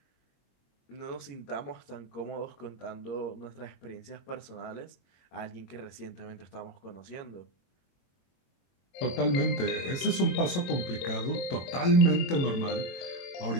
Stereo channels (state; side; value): late; right; 22 ms